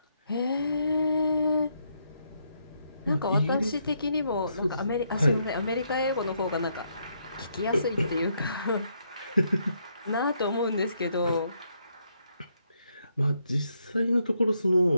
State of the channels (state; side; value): inverted; both; correlation -0.76